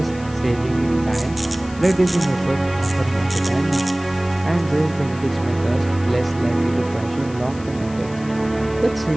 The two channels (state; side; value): noise; left; hiss, 20 dB below the sound